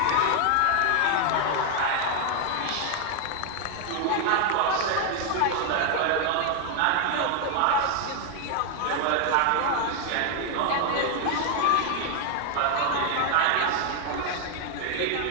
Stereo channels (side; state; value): both; different; correlation 0.01